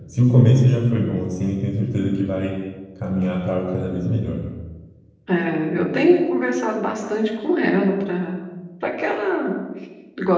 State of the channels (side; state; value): both; identical; correlation 1.00